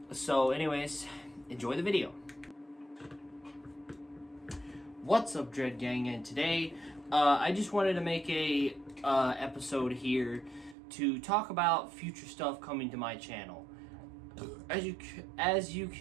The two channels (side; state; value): left; drops out; at 10.8 s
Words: So anyways, enjoy the video. What's up, Dread Gang? And today, I just wanted to make a episode here to talk about future stuff coming to my channel. As you